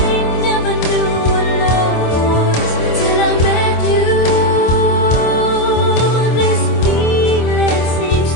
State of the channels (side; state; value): right; late; 25 ms